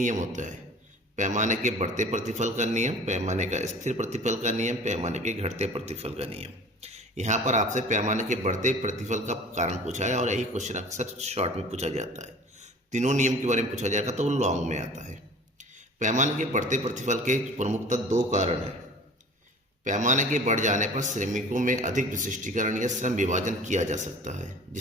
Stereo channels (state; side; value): normal; both; correlation 0.44